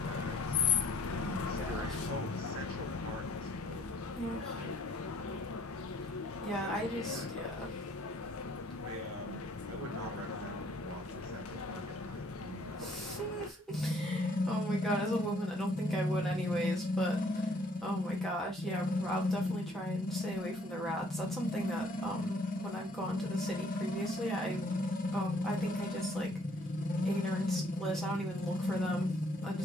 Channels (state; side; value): normal; both; correlation 0.61